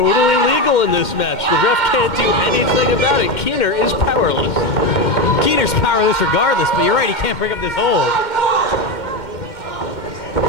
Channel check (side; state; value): right; late; 2.1 ms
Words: legal in this match. The ref can't do anything about it. Keener is powerless. Keener's powerless regardless, but you're right, he can't break up this hold.